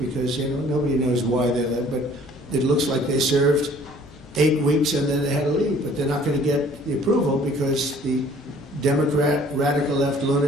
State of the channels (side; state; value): both; normal; correlation 0.54